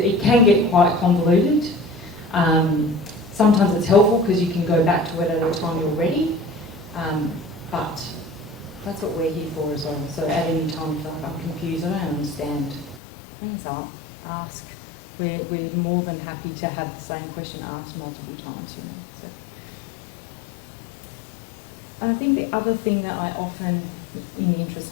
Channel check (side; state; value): right; drops out; at 13.0 s